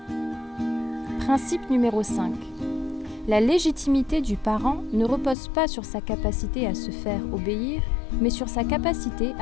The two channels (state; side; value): drops out; right; at 5.4 s